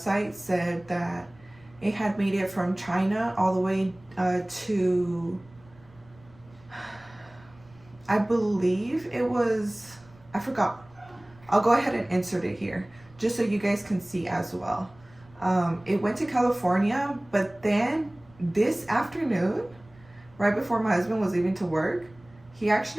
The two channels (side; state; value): right; noise; rumble, 26 dB below the sound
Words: said that it had made it from China all the way to, I believe it was, I forgot. I'll go ahead and insert it here just so you guys can see as well. It went to California, but then this afternoon, right before my husband was leaving to work, he